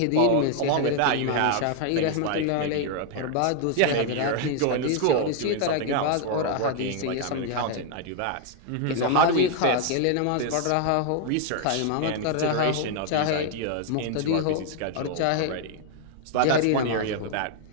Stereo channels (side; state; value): both; different; correlation 0.00